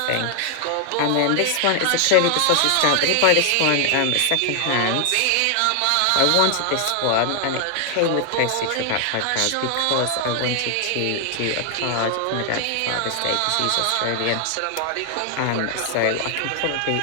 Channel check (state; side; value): different; both; correlation 0.00